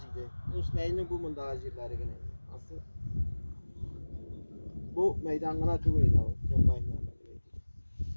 İsmail'in bu mundagi yerlarigina. Asıl bu maydongina to'g'ri edi kombaynlar.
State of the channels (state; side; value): inverted; both; correlation -1.00